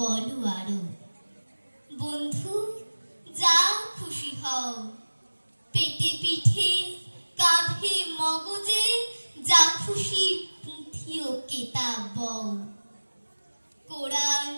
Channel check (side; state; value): both; inverted; correlation -1.00